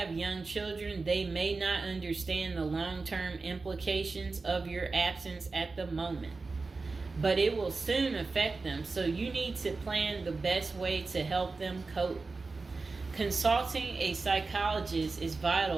young children, they may not understand the long-term implications of your absence at the moment, but it will soon affect them, so you need to plan the best way to help them cope. Consulting a psychologist is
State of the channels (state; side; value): quieter; left; 3.9 dB